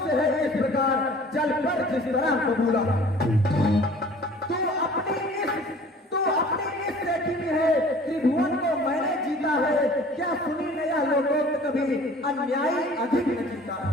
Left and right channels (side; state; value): both; normal; correlation 0.49